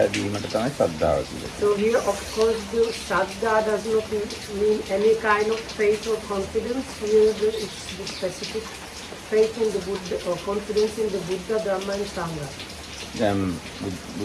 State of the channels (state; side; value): identical; both; correlation 1.00